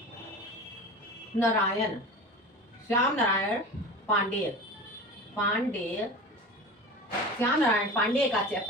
नारायण पांडेय श्याम नारायण पांडेय का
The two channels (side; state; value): both; normal; correlation 0.33